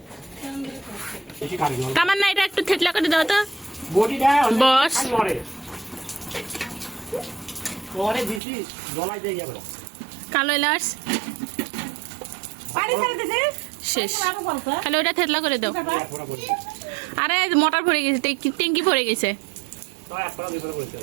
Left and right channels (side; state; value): left; drops out; at 8.4 s